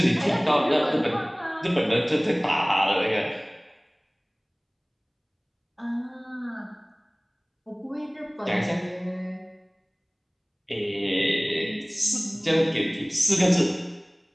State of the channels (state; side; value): identical; both; correlation 1.00